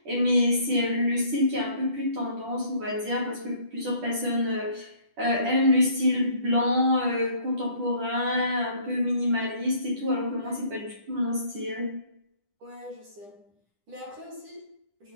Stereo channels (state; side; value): late; left; 10 ms